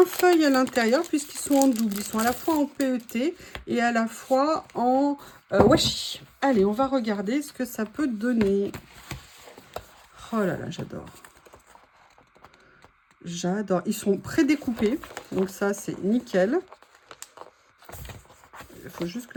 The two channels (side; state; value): both; identical; correlation 1.00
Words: feuilles à l'intérieur puisqu'ils sont en double. Ils sont à la fois en PET et à la fois en washi. Allez, on va regarder ce que ça peut donner. Oh là là, j'adore. J'adore. Ils sont prédécoupés. Donc ça, c'est nickel. Il faut juste